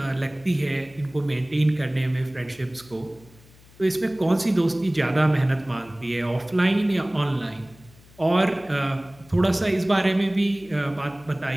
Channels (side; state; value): left; noise; hum, 25 dB below the sound